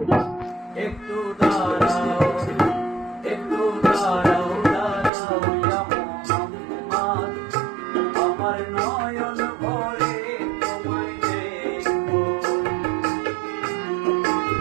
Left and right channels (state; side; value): drops out; left; at 5.1 s